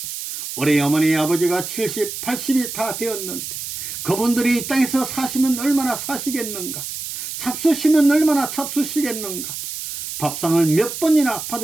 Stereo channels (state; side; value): noise; right; hiss, 7 dB below the sound